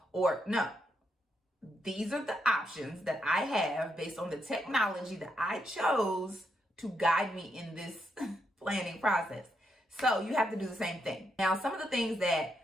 or no. These are the options that I have based on the technology that I chose to guide me in this planning process. So you have to do the same thing. Now, some of the things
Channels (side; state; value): both; normal; correlation 0.79